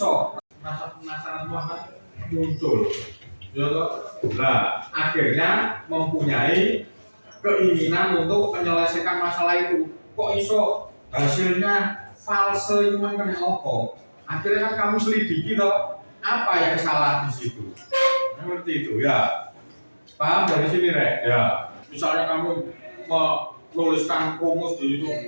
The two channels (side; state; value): both; inverted; correlation -1.00